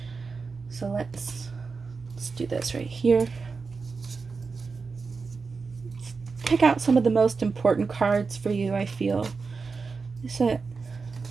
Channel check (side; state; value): left; quieter; 4.6 dB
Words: So let's do this right here. Pick out some of the most important cards for you, I feel. Is it?